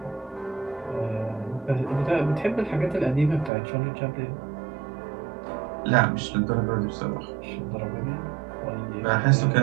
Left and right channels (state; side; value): drops out; left; at 3.5 s